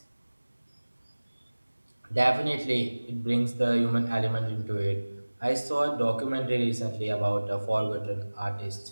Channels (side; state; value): both; inverted; correlation -1.00